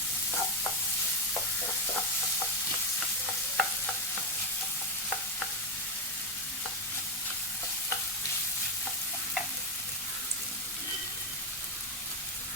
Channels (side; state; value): both; normal; correlation 0.06